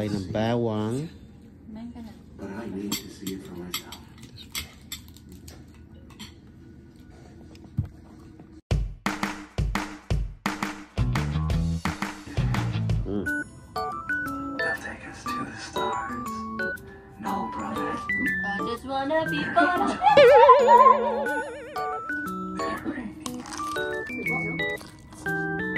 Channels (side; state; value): both; identical; correlation 1.00